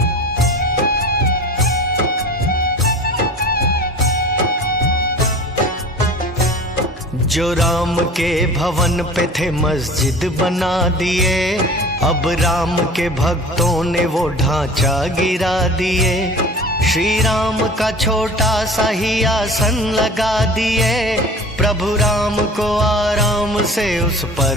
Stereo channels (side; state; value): both; normal; correlation 0.40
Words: जो राम के भवन पे थे मस्जिद बना दिए, अब राम के भक्तों ने वो ढांचा गिरा दिए। श्री राम का छोटा सा ही आसन लगा दिए, प्रभु राम को आराम से उस